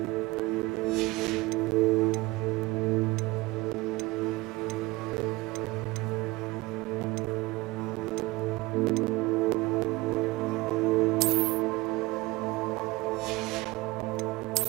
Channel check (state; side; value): quieter; left; 21.7 dB